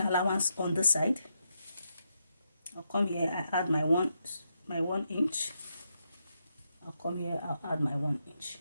allowance on this side. I'll come here, I add my one inch. I'll come here, I'll add my 1 inch.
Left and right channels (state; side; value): inverted; both; correlation -0.82